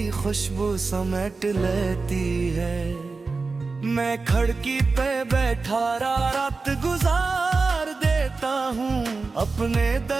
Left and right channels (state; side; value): quieter; left; 4.1 dB